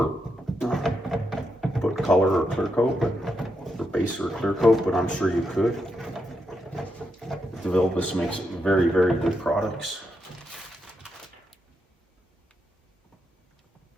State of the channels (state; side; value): normal; both; correlation 0.82